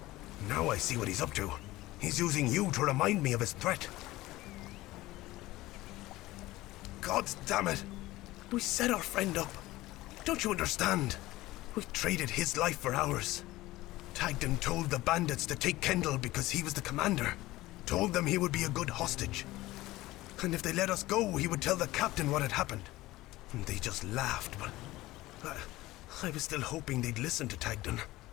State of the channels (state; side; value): quieter; right; 17.9 dB